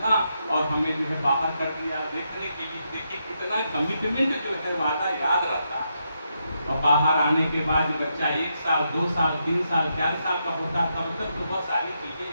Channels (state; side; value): inverted; both; correlation -0.81